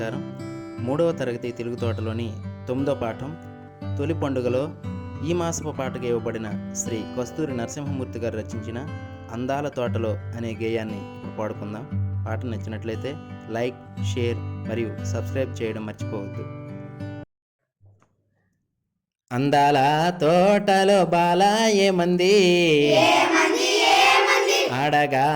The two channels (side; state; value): both; identical; correlation 1.00